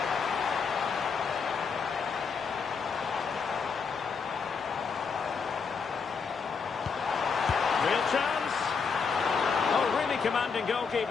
Real chance. Oh, really commanding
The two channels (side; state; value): right; quieter; 5.6 dB